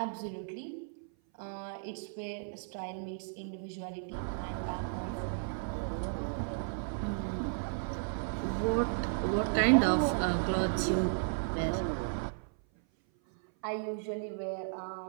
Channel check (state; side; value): silent; left; 55 dB below the other